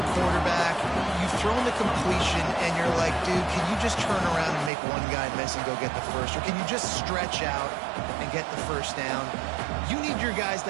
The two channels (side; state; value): left; drops out; at 4.7 s